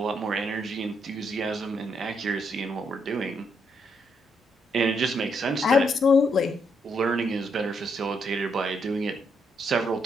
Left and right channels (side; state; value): both; normal; correlation 0.76